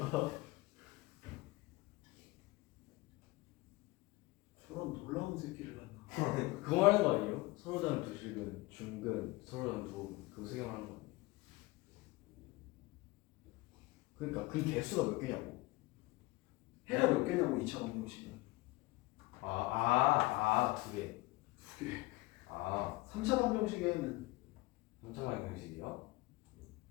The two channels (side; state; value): right; quieter; 22.0 dB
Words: 저런 놀라운 새끼를 만나. 그거 말하는 거 아니에요? 서로장 두식은 중근, 서로장 두호근 그거 세 개 말하는 거 아니에요? 그러니까 그 개수가 몇 개냐고. 해가 몇 개냐고 2차 방정식은. 2개. 2개. 아, 3차 방정식에는 3차 방정식이요?